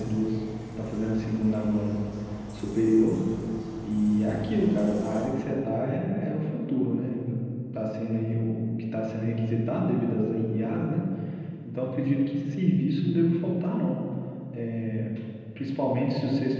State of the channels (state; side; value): identical; both; correlation 1.00